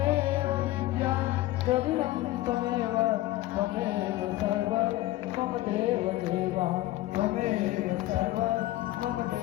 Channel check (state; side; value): quieter; right; 16.4 dB